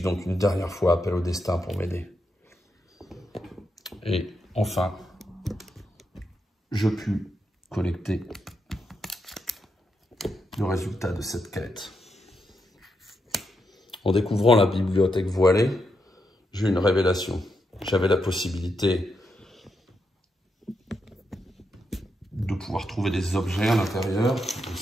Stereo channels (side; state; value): both; normal; correlation 0.83